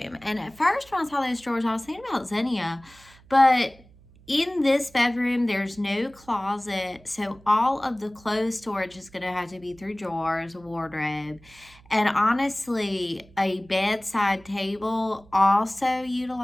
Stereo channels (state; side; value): noise; right; hum, 25 dB below the sound